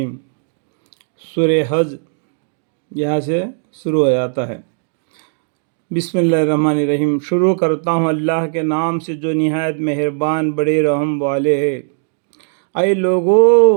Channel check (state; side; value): silent; left; digital silence